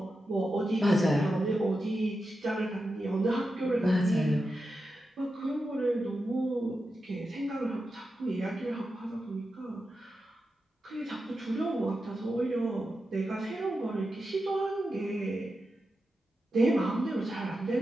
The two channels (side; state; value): both; normal; correlation 0.89